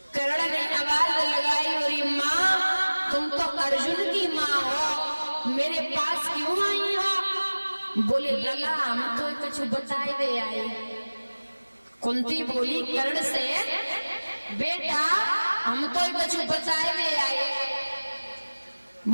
कर्ण ने आवाज लगाई और माँ तुम तो अर्जुन की माँ हो, मेरे पास क्यों आई हो? बोले लला हम तो कुछ बताए दे आए। कुंती बोली कर्ण से बेटा हम तो कुछ बताए दे आए।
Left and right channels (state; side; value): inverted; both; correlation -1.00